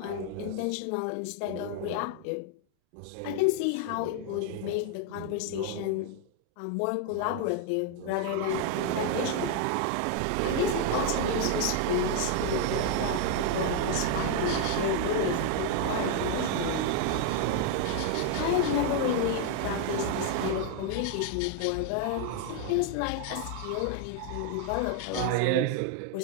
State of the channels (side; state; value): both; different; correlation 0.00